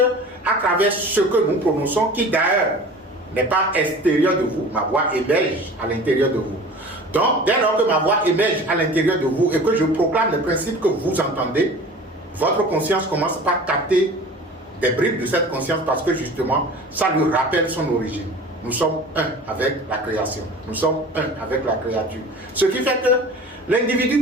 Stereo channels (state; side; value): normal; both; correlation 0.41